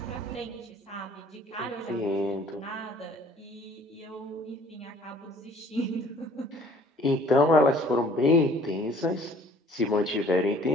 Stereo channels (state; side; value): normal; both; correlation 0.54